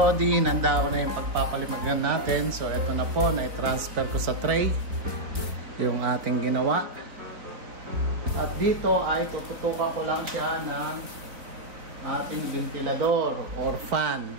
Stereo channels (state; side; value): late; left; 4.0 ms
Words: nanda ko na yung pagpapalimagan natin. So ito na po, na-transfer ko sa tray yung ating ginawa. At dito ay tututukan ko lang siya ng ating ventilador or fan